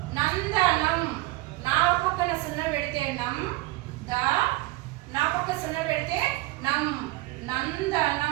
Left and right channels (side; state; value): left; quieter; 20.0 dB